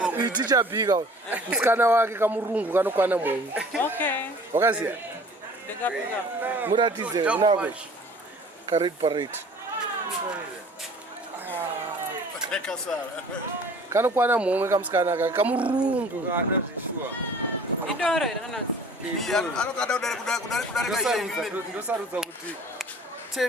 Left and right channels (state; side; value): normal; both; correlation 0.48